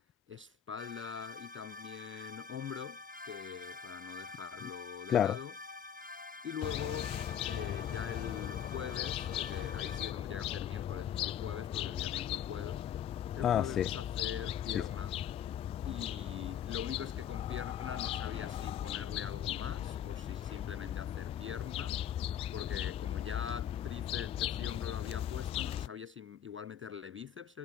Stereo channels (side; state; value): right; quieter; 9.6 dB